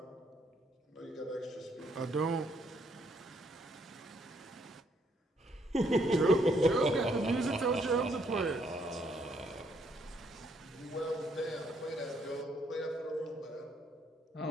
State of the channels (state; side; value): normal; both; correlation 0.71